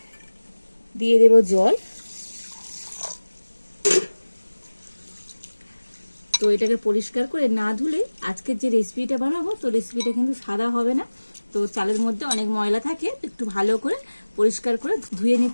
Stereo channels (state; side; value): inverted; both; correlation -1.00